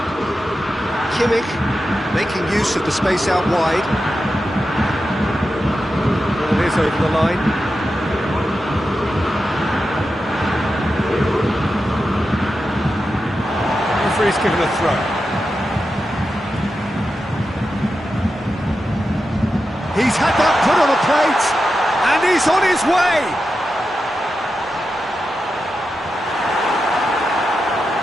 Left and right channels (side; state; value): both; normal; correlation 0.90